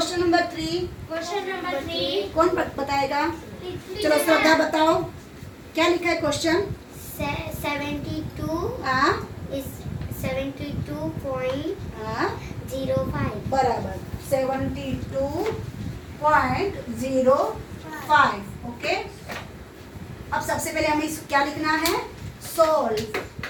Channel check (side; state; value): both; identical; correlation 1.00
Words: number 3, question number 3। कौन बताएगा? चलो श्रद्धा बताओ, क्या लिखा है क्वेश्चन? 72 हाँ is 72.05. हाँ, बराबर 72.05। ओके, अब सबसे पहले हमें क्या लिखना है? सोल्व।